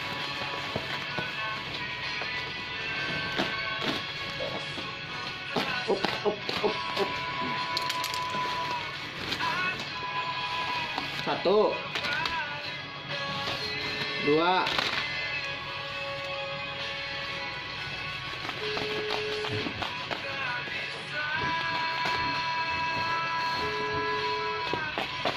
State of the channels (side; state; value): both; identical; correlation 1.00